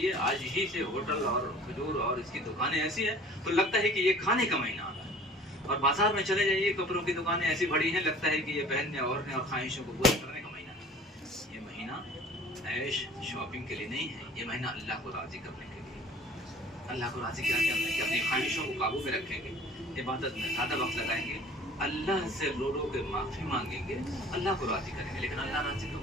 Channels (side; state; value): both; normal; correlation 0.47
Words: आज ही से होटल और खजूर और इसकी दुकानें ऐसी हैं तो लगता है कि ये खाने का महीना आ रहा है। और बाजार में चले जाइए, कपड़ों की दुकानें ऐसी भरी हैं, लगता है कि ये पहनने और ख्वाहिशों को पूरा करने का महीना है। ये महीना ऐश शॉपिंग के लिए नहीं है, ये महीना अल्लाह को राज़ी करने के लिए। अल्लाह को राज़ी क्या करना है कि अपनी ख्वाहिशों को काबू में रखेंगे, इबादत में ज़्यादा वक्त लगाएंगे, अल्लाह से रो रो के माफ़ी मांगेंगे, अल्लाह को राज़ी करेंगे। लेकिन अल्लाह राज़ी कब